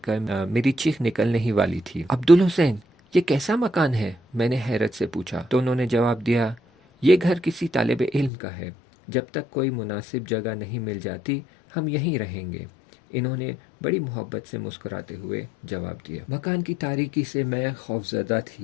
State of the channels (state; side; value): drops out; right; at 8.3 s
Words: کر میری چیخ نکلنے ہی والی تھی۔ عبدالحسین یہ کیسا مکان ہے؟ میں نے حیرت سے پوچھا۔ تو انہوں نے جواب دیا یہ گھر کسی طالب علم کا ہے، جب تک کوئی مناسب جگہ نہیں مل جاتی ہم یہیں رہیں گے۔ انہوں نے بڑی محبت سے مسکراتے ہوئے جواب دیا۔ مکان کی تاریکی سے میں خوفزدہ